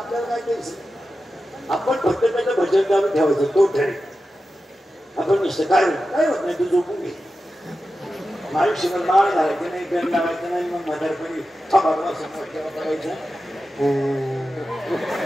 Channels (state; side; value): normal; both; correlation 0.92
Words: काय द्यायचं? आपण फक्त त्याचं भजन गाणं ठेवायचं. तो ठरेल. आपण नुसतं काय होत नाही. तू झोपून घे. आयुष्यभर माळ घालायचं नाही, गण लावायचं नाही. मग म्हातारपणी थांबावा समोर तेव्हा करायचं.